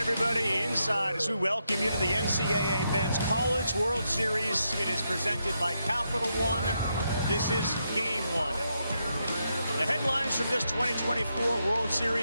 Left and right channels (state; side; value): inverted; both; correlation -0.82